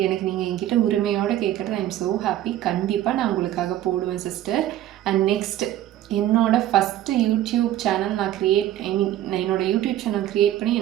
எனக்கு நீங்கள் என்கிட்ட உரிமையோடு கேட்குறது. I am so happy. கண்டிப்பாக நான் உங்களுக்காக போடுவேன் சிஸ்டர். அண்ட் நெக்ஸ்ட் என்னோடய ஃபஸ்ட்டு யூடியூப் சேனல் நான் என்னோடய யூடியூப் சேனல் க்ரியேட் பண்ணி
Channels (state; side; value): quieter; left; 12.9 dB